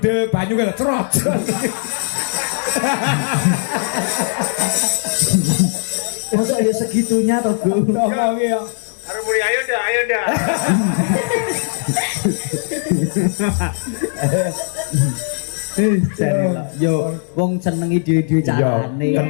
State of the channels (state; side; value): silent; right; digital silence